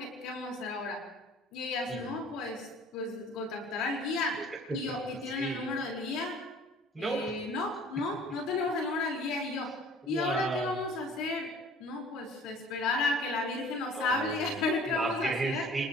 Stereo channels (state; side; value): normal; both; correlation 0.49